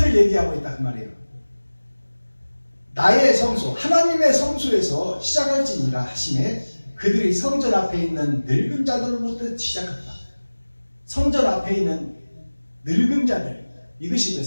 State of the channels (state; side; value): inverted; both; correlation -1.00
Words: 얘기하고 있다 그 말이에요. 나의 성소, 하나님의 성소에서 시작할지니라 하시매 그들이 성전 앞에 있는 늙은 자들로부터 시작한다. 성전 앞에 있는 늙은 자들. 이것이